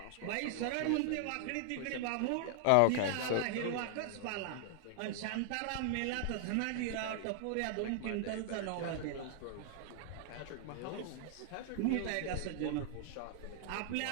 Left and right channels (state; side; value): different; both; correlation 0.00